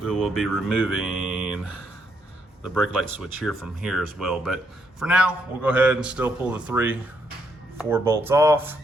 we will be removing the brake light switch here from here as well, but for now we'll go ahead and still pull the 3, 4 bolts off,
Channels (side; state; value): both; normal; correlation 0.75